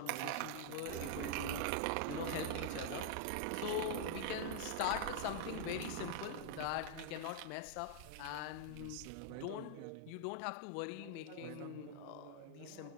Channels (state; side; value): different; both; correlation 0.00